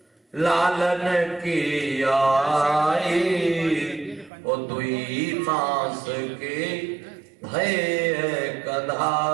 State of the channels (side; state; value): left; drops out; at 4.3 s